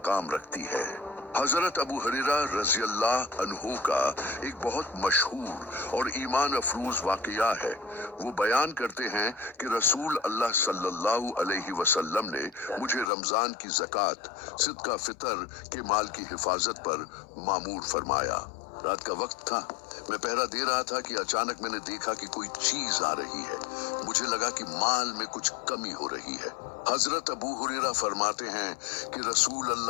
रखती है। हजरत अबू हुरैरा रज़ियल्लाहु अन्हु का एक बहुत मशहूर और ईमान अफरूज वाकया है। वो बयान करते हैं कि रसूल अल्लाह सल्लल्लाहु अलैहि वसल्लम ने मुझे रमजान की ज़कात, सिदका फितर के माल की हिफाजत पर मामूर फरमाया। रात का वक्त था, मैं पहरा दे रहा था कि अचानक मैंने देखा कि कोई चीज आ रही है। मुझे लगा कि माल में कुछ कमी हो रही है। हजरत अबू हुरैरा फरमाते हैं कि रसूल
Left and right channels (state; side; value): drops out; right; at 13.1 s